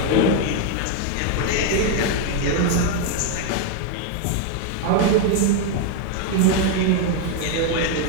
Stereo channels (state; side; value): different; both; correlation 0.01